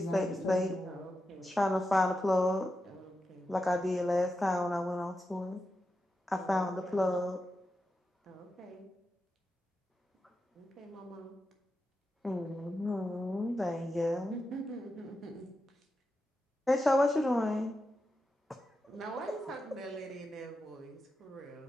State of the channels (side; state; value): both; normal; correlation 0.89